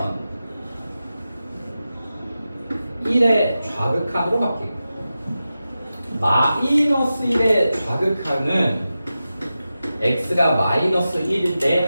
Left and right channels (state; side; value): inverted; both; correlation -0.93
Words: 1의 좌극한으로 바뀌고 마이너스 1의 좌극한은 x가 마이너스 1일